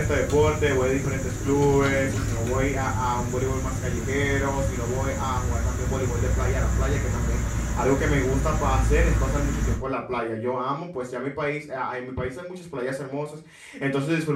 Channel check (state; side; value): identical; both; correlation 1.00